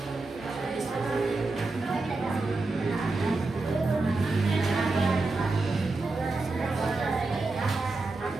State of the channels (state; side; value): quieter; left; 3.4 dB